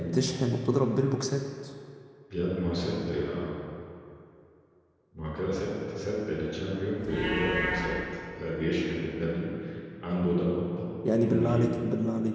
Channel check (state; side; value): identical; both; correlation 1.00